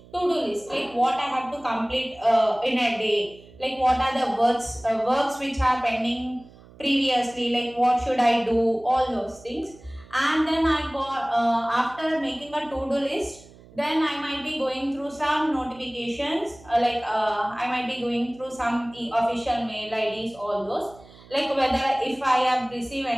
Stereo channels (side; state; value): right; noise; hum, 23 dB below the sound